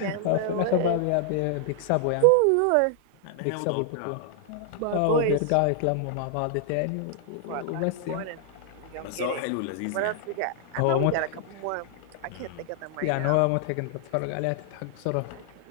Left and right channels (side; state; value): both; different; correlation 0.00